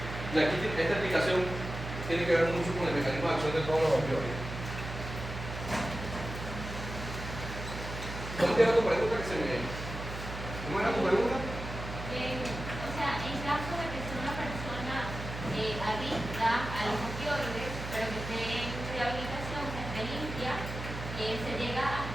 aquí esta explicación tiene que ver mucho con el mecanismo de acción de todos los opioides. ¿Cómo era tu pregunta que se me... ¿Cómo era tu pregunta? O sea, en caso de que sea una persona adicta a los opioides, pero que esté en rehabilitación, que esté limpia, se llega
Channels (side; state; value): right; noise; hum, 8 dB below the sound